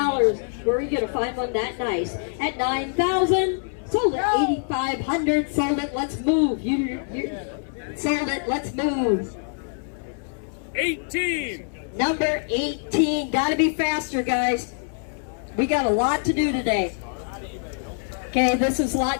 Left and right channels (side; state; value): right; silent; digital silence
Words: where are you going to find one that nice, at 9,000, sold it, 8,500, sold it, let's move, sold it, let's move. 18. Number 18, gotta be faster, guys. We got a lot to do today. Okay, this is